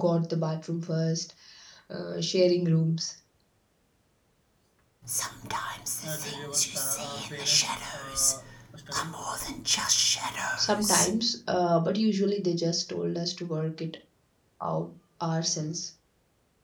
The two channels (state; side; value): identical; both; correlation 1.00